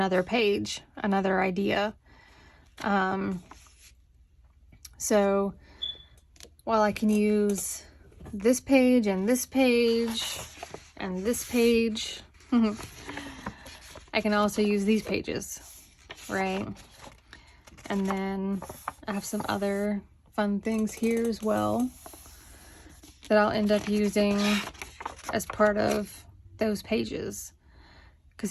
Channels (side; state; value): both; identical; correlation 1.00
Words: page, another idea. So while I can use this page and this page and this page, I can also use these pages, right? And then I have some other fun things here as well that I'll end up using as part of those pages,